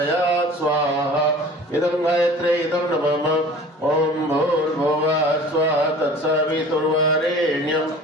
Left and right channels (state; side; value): normal; both; correlation 0.44